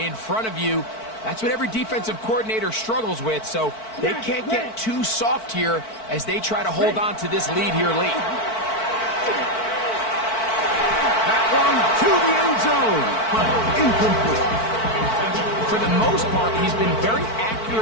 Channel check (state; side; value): late; right; 4.5 ms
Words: front of you? That's what every defensive coordinator struggles with, so they can't get too soft here as they try to hold on to this lead here late. That one to the end zone, but incomplete. For the most part, he's been very